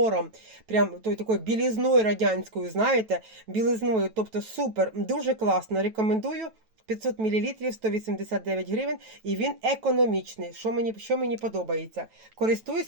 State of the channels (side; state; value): left; late; 9.1 ms